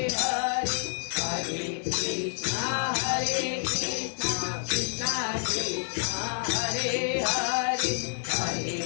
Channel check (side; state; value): right; silent; 59 dB below the other